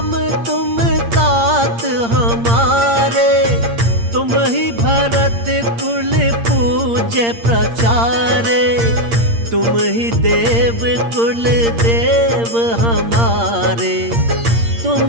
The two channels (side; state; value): left; late; 8.7 ms